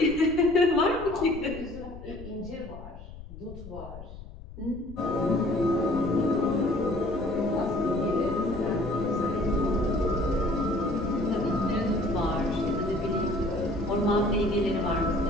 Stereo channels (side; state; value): left; noise; rumble, 14 dB below the sound